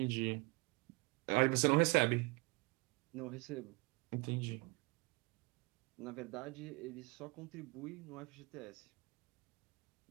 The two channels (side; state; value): left; quieter; 27.4 dB